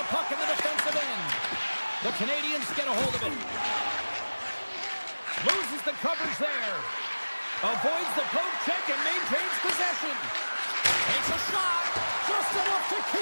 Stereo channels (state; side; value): inverted; both; correlation -1.00